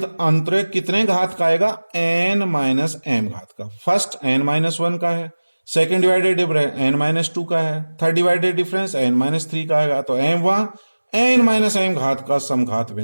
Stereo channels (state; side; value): inverted; both; correlation -1.00